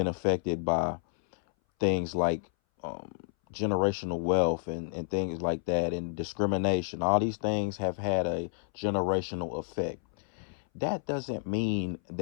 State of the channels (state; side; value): silent; right; 58 dB below the other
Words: affected by things like um, generational wealth and things like that, and discrimination. All these things have had a generational effect. That doesn't mean